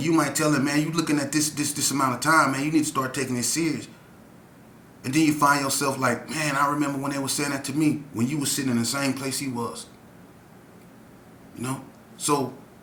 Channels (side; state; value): both; identical; correlation 1.00